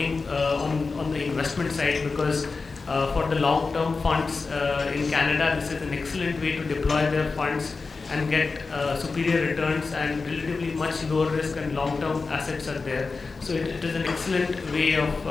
on the investment side because for the long-term funds in Canada, this is an excellent way to deploy their funds and get superior returns and relatively much lower risk and long-term assets are there. So it is an excellent way of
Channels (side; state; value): right; quieter; 4.2 dB